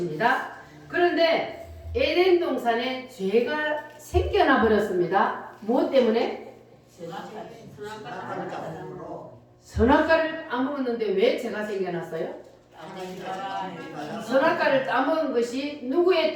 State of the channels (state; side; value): identical; both; correlation 1.00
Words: 그런데 에덴 동산에 죄가 생겨나 버렸습니다. 무엇 때문에? 선악과를 따먹었는데 왜 죄가 생겨났어요? 선악과를 따먹은 것이 누구의